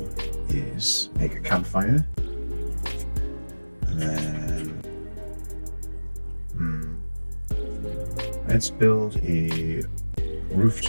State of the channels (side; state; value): both; inverted; correlation -1.00